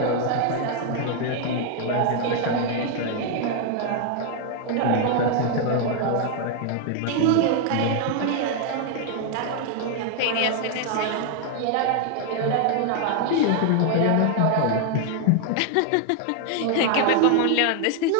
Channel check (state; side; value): different; both; correlation 0.00